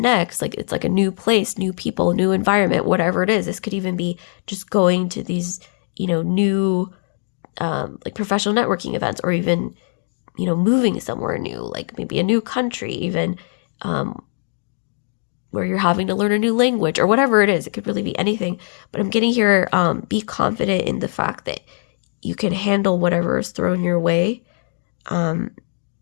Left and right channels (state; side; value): silent; right; digital silence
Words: next? Like, it's like a new place, new people, new environment, whatever it is. This could even be just going to these, new, like professional networking events, or even, moving somewhere new, like maybe a new country, even, where you're having to learn a new language or whatever it is. It could really be anything. But I'm getting here, be confident in the fact that you can handle whatever is thrown your way.